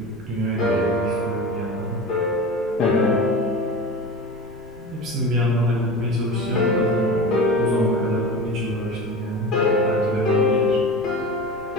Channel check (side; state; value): right; noise; rumble, 25 dB below the sound